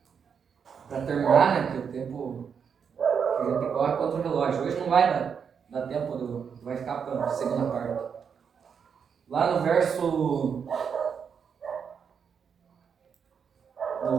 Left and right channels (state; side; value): quieter; left; 6.8 dB